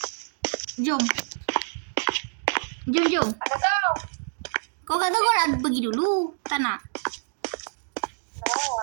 Jom. Ada kau. Kau kata kau nak pergi dulu. Tak nak?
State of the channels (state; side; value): silent; left; digital silence